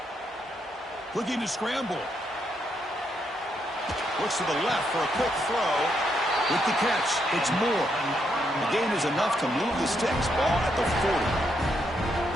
Looking to scramble. Looks to the left for a quick throw. With the catch, it's Moore. The gain is enough to move the sticks. Ball at the 40.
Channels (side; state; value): both; normal; correlation 0.78